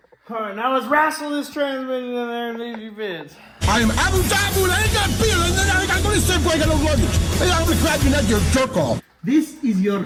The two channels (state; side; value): identical; both; correlation 1.00